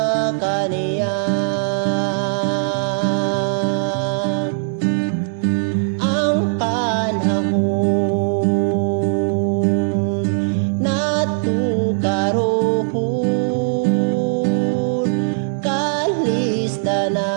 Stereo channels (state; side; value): silent; left; digital silence